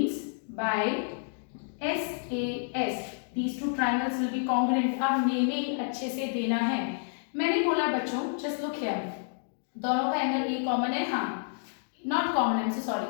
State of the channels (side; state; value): right; silent; digital silence